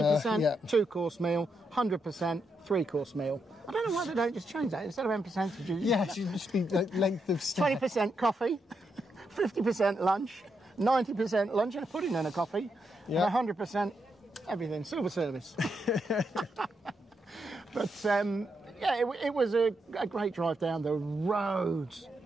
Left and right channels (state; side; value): normal; both; correlation 0.82